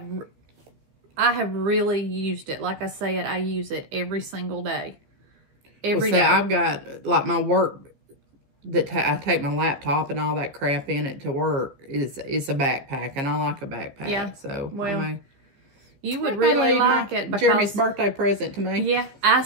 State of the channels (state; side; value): late; left; 15 ms